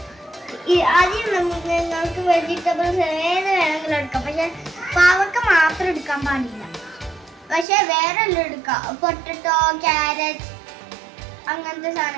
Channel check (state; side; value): drops out; left; at 7.7 s